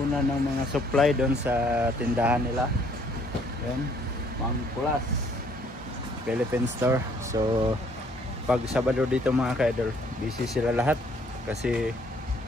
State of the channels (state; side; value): normal; both; correlation 0.63